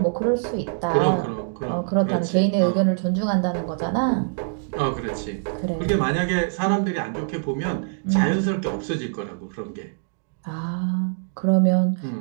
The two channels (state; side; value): silent; left; digital silence